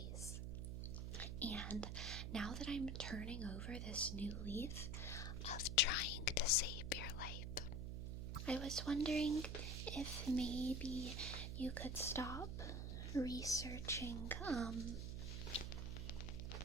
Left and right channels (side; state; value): right; noise; hum, 3 dB below the sound